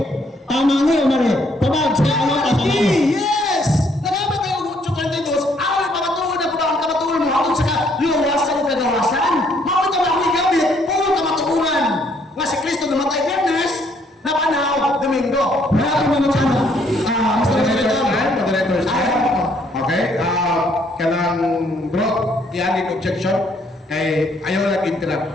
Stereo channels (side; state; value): both; normal; correlation 0.67